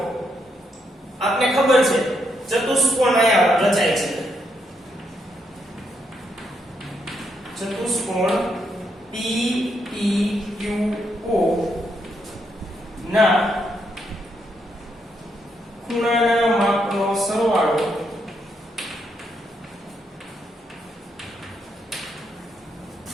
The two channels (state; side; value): normal; both; correlation 0.77